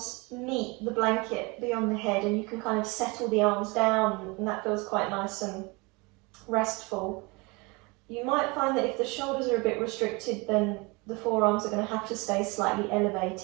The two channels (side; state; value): left; quieter; 26.9 dB